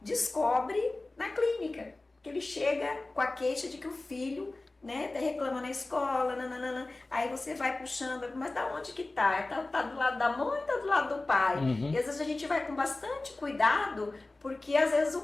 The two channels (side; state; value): right; quieter; 3.0 dB